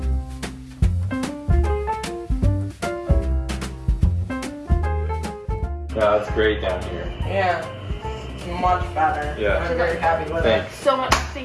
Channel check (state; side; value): identical; both; correlation 1.00